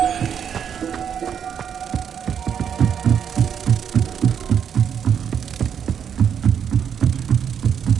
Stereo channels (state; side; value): quieter; left; 8.1 dB